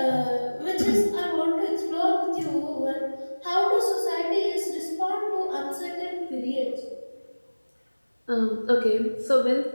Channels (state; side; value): inverted; both; correlation -1.00